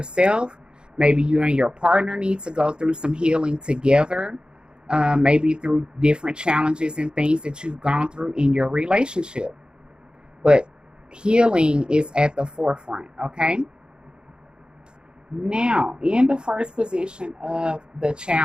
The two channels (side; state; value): left; late; 0.049 ms